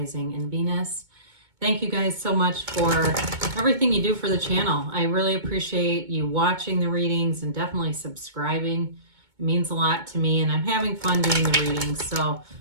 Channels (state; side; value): late; left; 2.2 ms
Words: and Venus. Thank you guys so much for everything you do for the channel. I really appreciate you watching the readings and definitely subscribing. It means a lot to me, and I'm having fun doing the readings, so